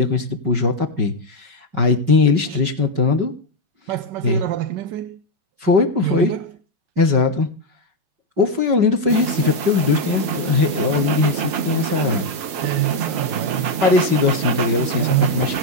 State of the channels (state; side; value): late; left; 5.3 ms